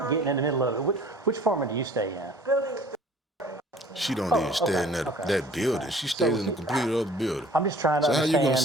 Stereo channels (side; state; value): both; normal; correlation 0.51